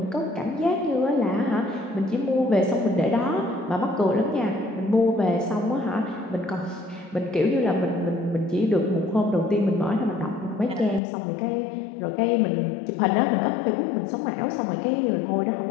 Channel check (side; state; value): right; drops out; at 11.0 s